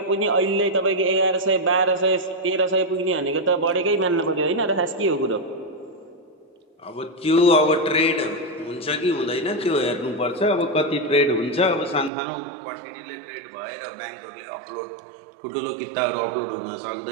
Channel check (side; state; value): left; drops out; at 12.1 s